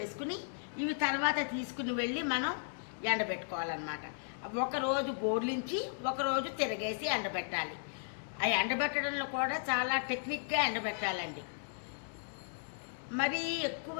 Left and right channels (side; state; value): right; silent; digital silence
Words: ఇవి తర్వాత తీసుకుని వెళ్ళి మనం ఎండబెట్టుకోవాలన్నమాట. ఒకరోజు బోర్లించి ఒకరోజు తిరగేసి ఎండబెట్టాలి. ఆ ఎండబెట్టడంలో కూడా చాలా టెక్నిక్గా ఎండబెట్టాలండి. మరీ ఎక్కువ